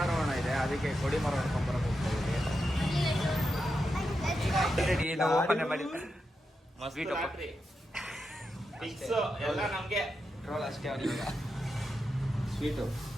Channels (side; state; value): both; normal; correlation 0.87